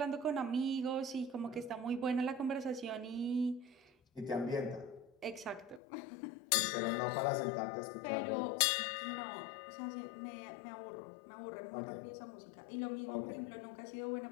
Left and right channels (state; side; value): drops out; right; at 5.8 s